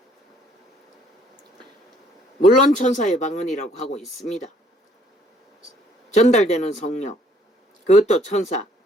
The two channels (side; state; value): both; normal; correlation 0.63